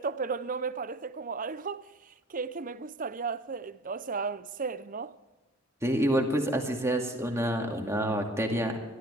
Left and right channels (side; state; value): both; normal; correlation 0.45